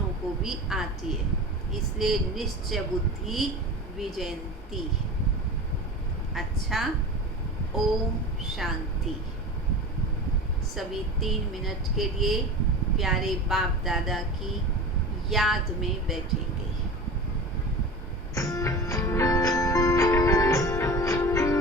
को भी आती है। इसलिए निश्चय बुद्धि विजयंती। अच्छा, ओम शांति। सभी 3 मिनट के लिए प्यारे बाप दादा की याद में बैठेंगे।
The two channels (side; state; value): both; normal; correlation 0.33